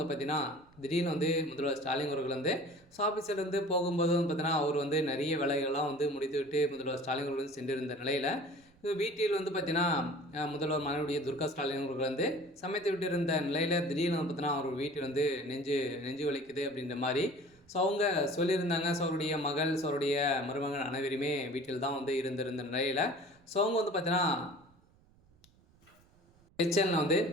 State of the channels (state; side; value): noise; right; rumble, 30 dB below the sound